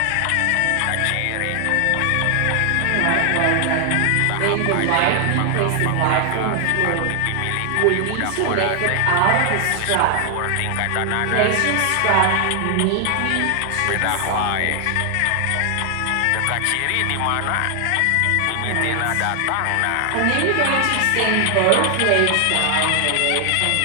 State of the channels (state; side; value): different; both; correlation 0.00